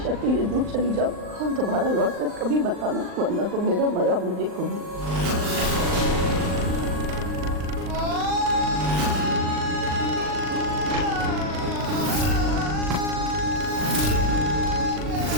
के लिए दूर चली जाओ और दोबारा लौट कर कभी मत आना, वरना तो मेरा मरा मुझे देखोगी।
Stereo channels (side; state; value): left; late; 39 ms